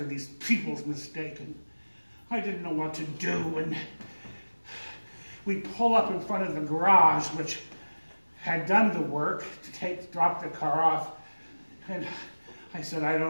these people's mistake. And I didn't know what to do. And we pull up in front of the garage, which had done the work to drop the car off. And I said, I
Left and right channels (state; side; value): inverted; both; correlation -1.00